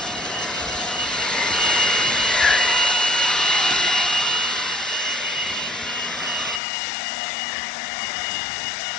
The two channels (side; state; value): right; drops out; at 6.6 s